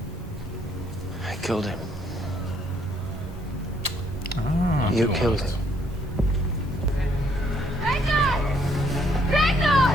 I killed him. You killed him. Ragnar! Ragnar!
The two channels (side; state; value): both; normal; correlation 0.68